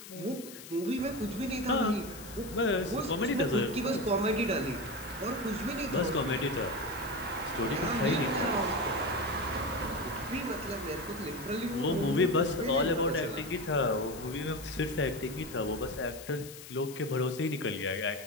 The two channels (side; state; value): left; noise; hiss, 15 dB below the sound